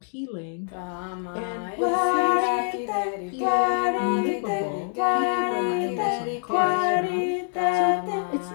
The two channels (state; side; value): silent; right; digital silence